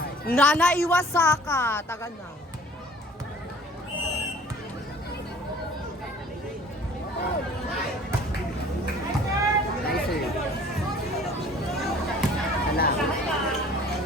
Nana Iwasaka. Taga na. Nice sir. Wala.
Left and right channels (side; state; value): both; normal; correlation 0.50